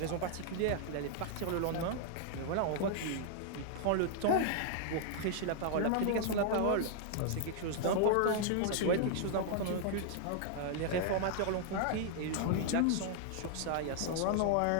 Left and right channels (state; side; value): different; both; correlation -0.01